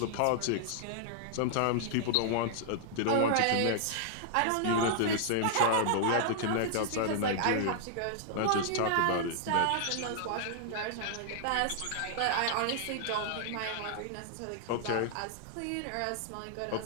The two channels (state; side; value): different; both; correlation -0.01